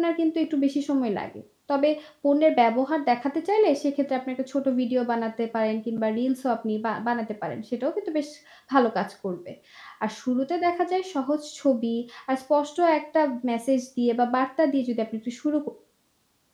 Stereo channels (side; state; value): both; identical; correlation 1.00